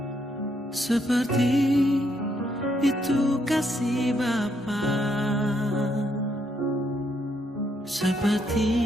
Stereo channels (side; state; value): both; normal; correlation 0.75